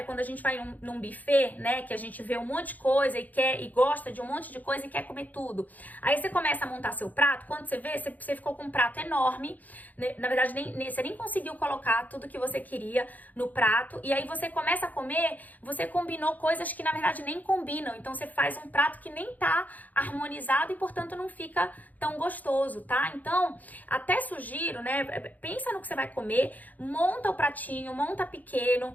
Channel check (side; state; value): right; late; 0.080 ms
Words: quando a gente vai num buffet, né, que a gente vê um monte de coisa e gosta de um monte de coisa e quer comer tudo. Aí você começa a montar seu prato, quando você vê, você ficou com um prato enorme, né? Na verdade, você nem conseguiu colocar tudo que você queria no prato, e aí você começa a comer, você combinou coisas que na verdade nem combinam, então você faz um prato que nem tá harmonizado e portanto não fica tão gostoso, tá? Então, até sugiro, né, pensa no que você vai comer, monta o pratinho, monta